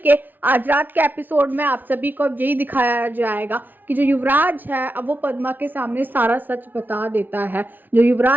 के आज रात के episode में आप सभी को यही दिखाया जाएगा कि जो युवराज है अब वो पद्मा के सामने सारा सच बता देता है। जो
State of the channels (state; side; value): late; left; 0.087 ms